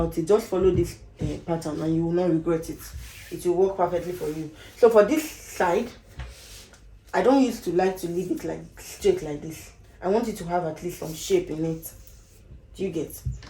it. Just follow this pattern and you will not regret it. It will work perfectly for you. So for this side, I don't used to like to leave it like straight like this. I want it to have at least some shape in it. Do you get?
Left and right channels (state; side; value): identical; both; correlation 1.00